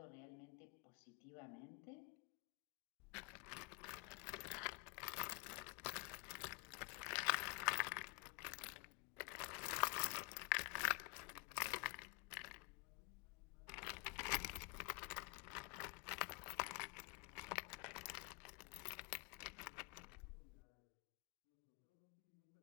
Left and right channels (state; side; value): quieter; right; 29.1 dB